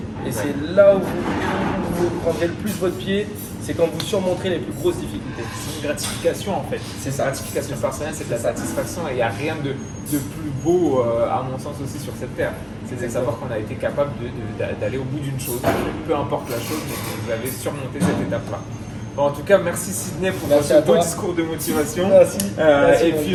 Et c'est là où vous prendrez le plus votre pied, c'est quand vous surmonterez les plus grosses difficultés. C'est une gratification en fait. C'est ça. La gratification personnelle, c'est de la satisfaction et il n'y a rien de plus beau, à mon sens aussi, sur cette terre. C'est de savoir qu'on a été capable d'aller au bout d'une chose, peu importe la chose, mais que vous avez surmonté cette étape-là. Bon, en tout cas, merci Sydney pour ce beau discours de motivation. Merci. Et puis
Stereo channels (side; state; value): both; identical; correlation 1.00